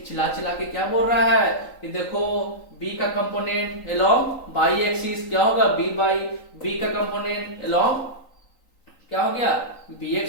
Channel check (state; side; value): late; right; 3.9 ms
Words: चिल्ला के क्या बोल रहा है कि देखो बी का कंपोनेंट अलोंग बाई एक्सिस क्या होगा, बी बाई, बी का कंपोनेंट अलोंग क्या हो गया, बी